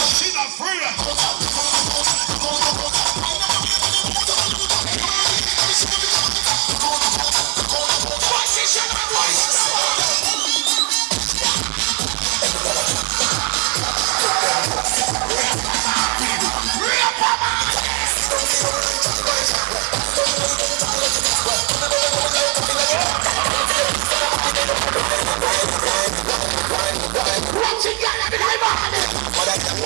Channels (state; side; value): quieter; left; 29.6 dB